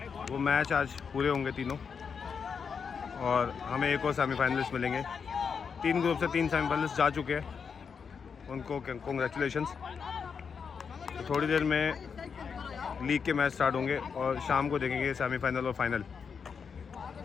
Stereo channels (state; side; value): quieter; right; 6.2 dB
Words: वो मैच आज पूरे होंगे तीनों, और हमें एक और सेमीफाइनलिस्ट मिलेंगे। 3 ग्रुप से 3 सेमीफाइनलिस्ट जा चुके हैं, उनको कॉन्ग्रेचुलेशंस। तो थोड़ी देर में लीग के मैच स्टार्ट होंगे और शाम को देखेंगे सेमीफाइनल और फाइनल।